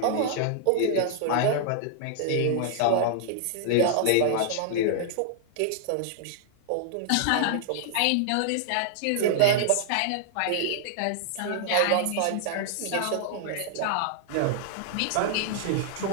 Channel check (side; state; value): both; different; correlation -0.01